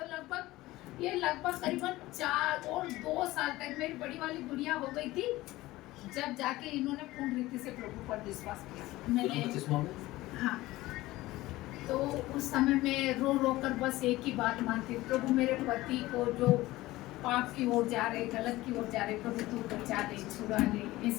लगभग करीबन 4 और 2 साल तक मेरी बड़ी वाली गुड़िया हो गई थी, जब जाके इन्होंने पूर्ण रीति से प्रभु पर विश्वास किया। मैंने हाँ, तो उस समय में रो रो कर बस एक ही बात मानती, प्रभु मेरे पति को जो पाप की ओर जा रहे, गलत की ओर जा रहे, प्रभु तू बचा दे, छुड़ा ले।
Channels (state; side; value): quieter; right; 18.0 dB